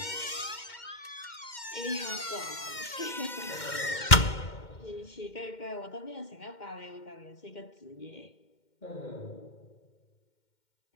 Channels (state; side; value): late; right; 2.1 ms